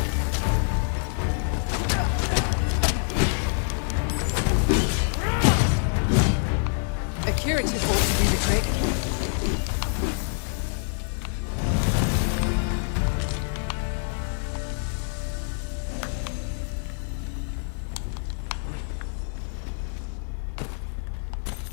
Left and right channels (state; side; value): silent; right; 61 dB below the other